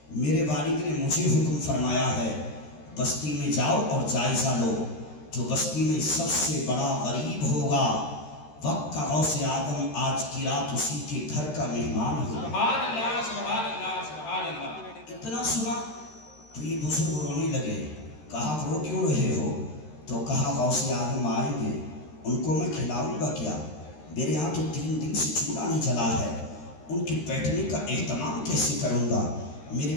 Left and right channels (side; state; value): right; late; 13 ms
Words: میرے والد نے مجھے حکم فرمایا ہے بستی میں جاؤ اور جائزہ لو، جو بستی میں سب سے بڑا غریب ہوگا وقت کا غوث اعظم آج کی رات اسی کے گھر کا مہمان ہوگا۔ سبحان اللہ، سبحان اللہ، سبحان اللہ۔ اتنا سنا تو یہ بزرگ رونے لگے۔ کہا رو کیوں رہے ہو؟ تو کہا غوث اعظم آئیں گے، ان کو میں کھلاؤں گا کیا؟ میرے یہاں تو 3 دن سے چولہا نہیں جلا ہے، ان کی بیٹھنے کا اہتمام کیسے کروں گا؟ میرے